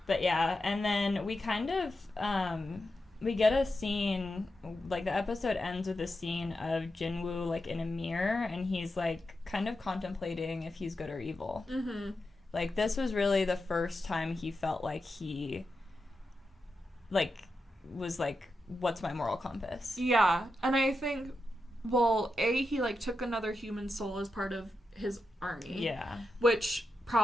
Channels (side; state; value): both; normal; correlation 0.88